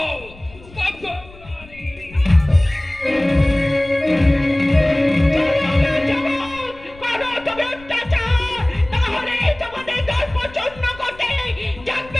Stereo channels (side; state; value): left; noise; rumble, 21 dB below the sound